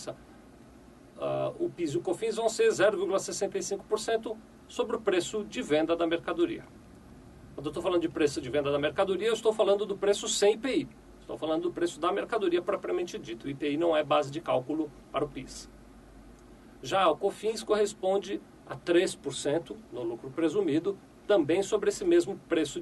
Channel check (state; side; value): identical; both; correlation 1.00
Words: o PIS e o COFINS vão ser 0,65% sobre o preço de venda da mercadoria. Quando eu estou falando de preço de venda da mercadoria, eu estou falando do preço sem IPI. Estou falando do preço da mercadoria propriamente dito. O IPI não é base de cálculo para o PIS. Já o COFINS corresponde a 3% no lucro presumido, também sobre esse mesmo preço